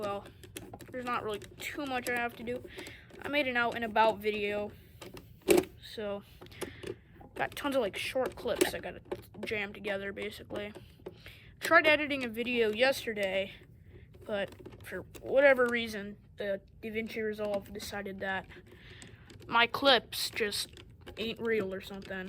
there's not really too much I have to do. I made an out and about video, so got tons of like short clips I gotta jam together basically. Tried editing a video yesterday, but for whatever reason, the DaVinci Resolve decided that my clips just ain't real or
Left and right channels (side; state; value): both; identical; correlation 1.00